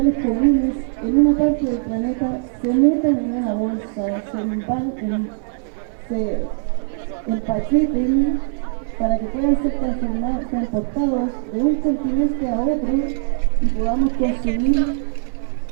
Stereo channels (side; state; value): left; silent; digital silence